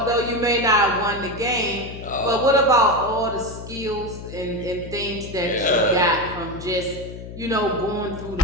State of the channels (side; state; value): left; noise; hum, 12 dB below the sound